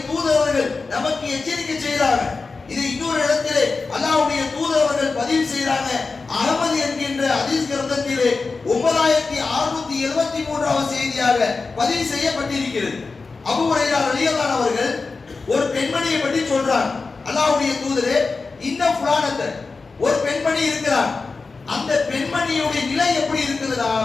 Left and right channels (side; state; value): right; quieter; 4.2 dB